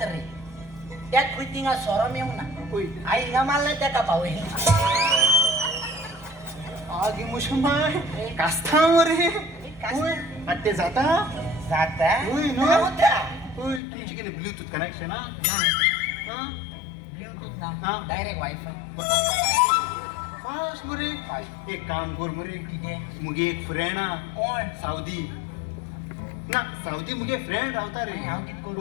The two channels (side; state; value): right; drops out; at 13.8 s